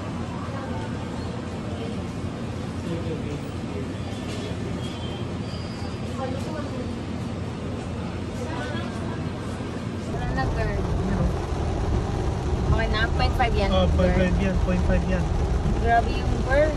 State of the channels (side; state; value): both; identical; correlation 1.00